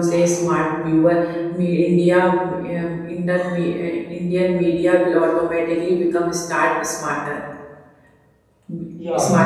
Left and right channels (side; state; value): both; identical; correlation 1.00